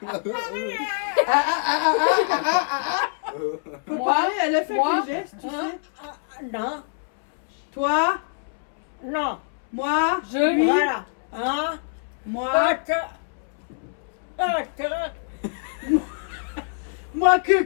Faut Moi, parler, elle a fait moi, des gestes, tu Ah, sais. ah, non, Toi, non, moi, Je. lui, voilà. Hein? moi, moi que,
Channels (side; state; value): right; silent; 62 dB below the other